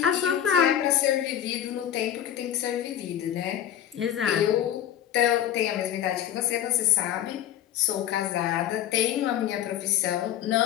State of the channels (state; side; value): quieter; right; 10.7 dB